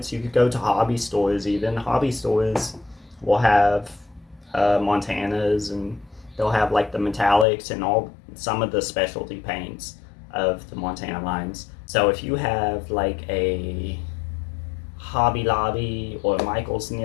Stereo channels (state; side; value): drops out; right; at 7.5 s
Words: You could go to hobby stores even. Hobby stores will have Montanas, and they'll have like the metallics and some of the specialty paints of the Montana lines. So if you have like a Hobby Lobby or Michael's